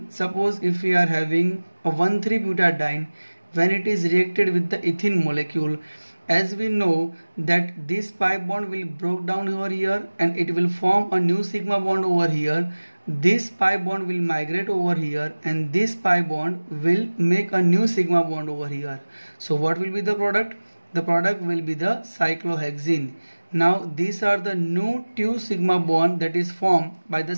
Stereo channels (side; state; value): both; inverted; correlation -1.00